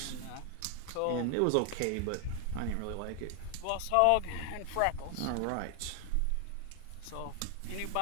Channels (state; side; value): different; both; correlation 0.00